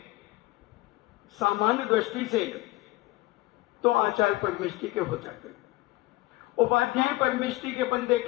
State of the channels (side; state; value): right; quieter; 19.2 dB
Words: सामान्य दृष्टि से तो आचार्य परमेष्टि के हो जाते हैं। उपाध्याय परमेष्टि के अपन